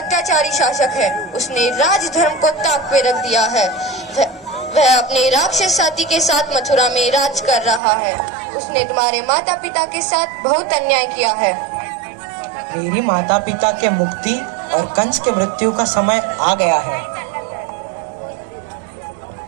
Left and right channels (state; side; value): drops out; left; at 7.8 s